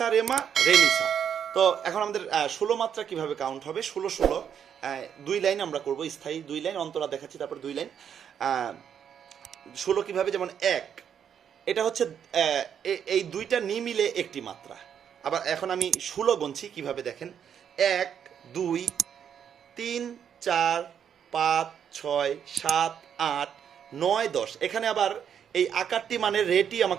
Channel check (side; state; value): left; quieter; 8.4 dB